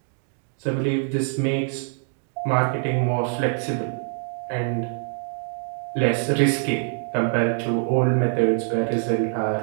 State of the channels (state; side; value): silent; left; 59 dB below the other